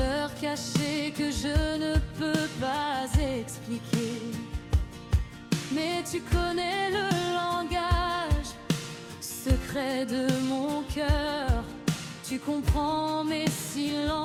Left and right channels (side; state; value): both; identical; correlation 1.00